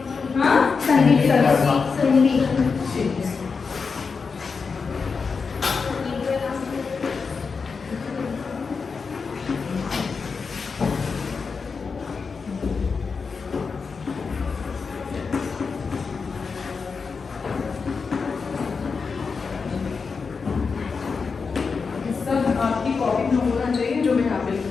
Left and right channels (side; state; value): right; quieter; 5.1 dB